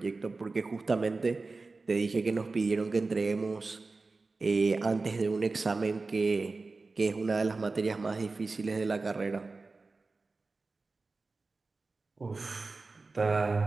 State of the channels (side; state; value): left; quieter; 3.8 dB